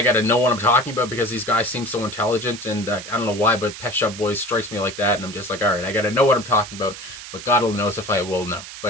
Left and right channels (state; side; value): noise; right; hiss, 12 dB below the sound